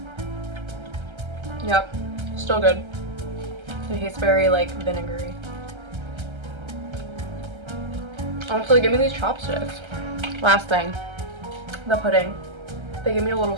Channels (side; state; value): left; late; 1.3 ms